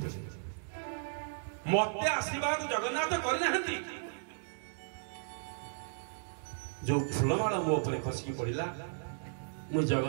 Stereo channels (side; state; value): left; silent; digital silence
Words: ମତେ ଆଶୀର୍ବାଦ ଜଗନ୍ନାଥ କରିନାହାନ୍ତି। ଯୋଉ ଫୁଲମାଳ ମୋ ଉପରେ ଖସିକି ପଡ଼ିଲା, ମୁଁ